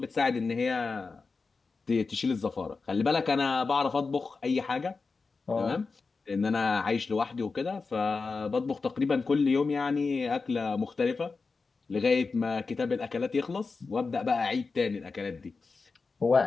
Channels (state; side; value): quieter; right; 4.4 dB